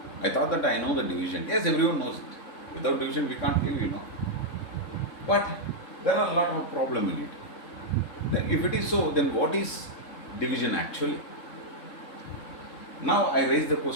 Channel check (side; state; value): right; late; 3.7 ms